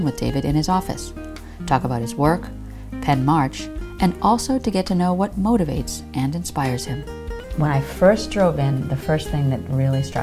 with David in his office, talk about his work, pen March, and also to get to know what motivates and inspires him. When I first drove in, the first thing that really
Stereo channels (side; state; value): both; identical; correlation 1.00